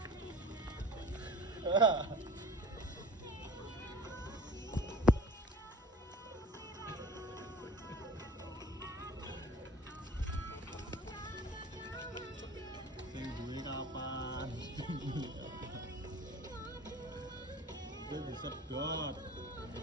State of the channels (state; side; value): normal; both; correlation 0.43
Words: Sing duwe kapan? Gue bisa dot.